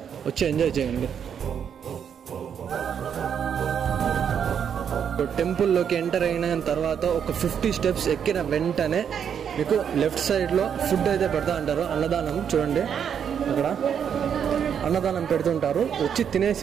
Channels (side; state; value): left; quieter; 8.0 dB